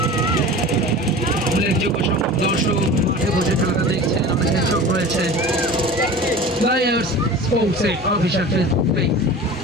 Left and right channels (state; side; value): normal; both; correlation 0.36